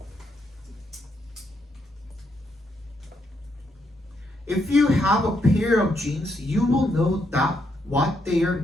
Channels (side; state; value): both; normal; correlation 0.78